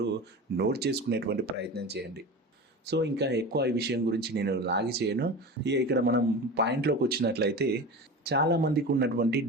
నోట్ చేసుకునేటువంటి ప్రయత్నం చేయండి. సో ఇంకా ఎక్కువ ఈ విషయం గురించి నేను లాగి చేయను. ఇక్కడ మనం పాయింట్లోకి వచ్చినట్లయితే చాలామందికి ఉన్నటువంటి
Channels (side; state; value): both; normal; correlation 0.30